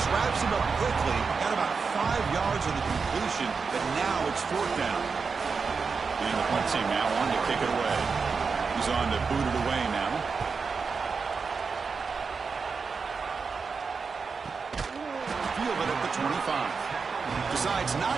wraps him up quickly. Got about 5 yards of the completion, but now it's 4th down. And the punt team now on to kick it away. He's on to boot it away now. Field it at the 25. Decides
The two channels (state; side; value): quieter; left; 5.1 dB